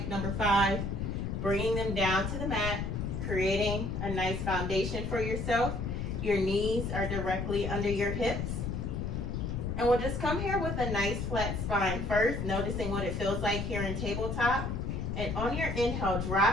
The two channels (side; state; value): left; noise; rumble, 2 dB below the sound